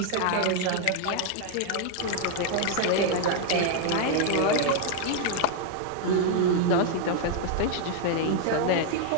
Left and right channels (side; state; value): both; different; correlation 0.00